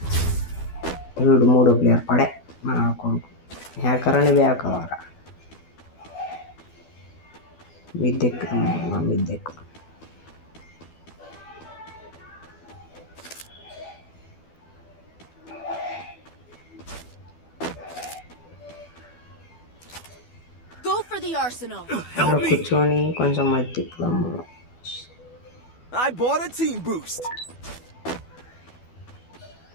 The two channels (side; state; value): right; late; 12 ms